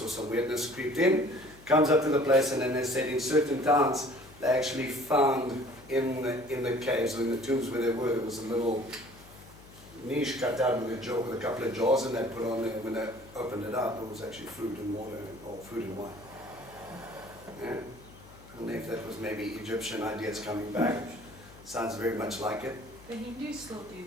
or some weirdness creeped in, comes up to the place, and then they said in certain towns they actually found in the caves or in the tombs where they were, there was a little niche cut out with a couple of jars, and they put on there. When they opened it up, it was actually food and water, or food and wine. Yeah. I don't know if that was maybe Egyptian ideas coming back. Sounds very much like it. The Hindus still do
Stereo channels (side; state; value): left; noise; hum, 21 dB below the sound